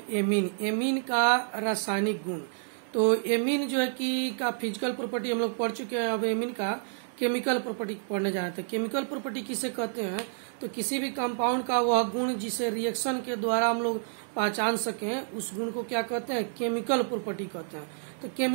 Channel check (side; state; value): left; silent; digital silence